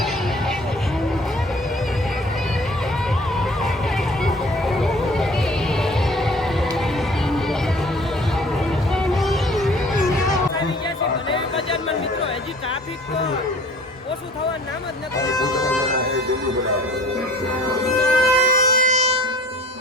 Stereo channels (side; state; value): both; normal; correlation 0.50